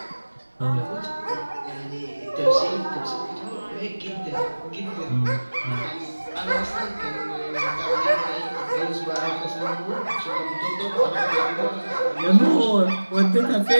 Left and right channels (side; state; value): both; inverted; correlation -1.00